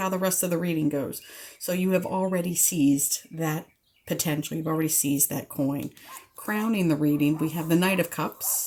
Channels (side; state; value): both; identical; correlation 1.00